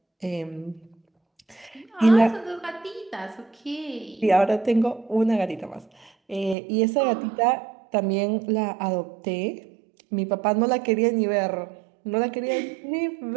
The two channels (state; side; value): drops out; left; at 6.6 s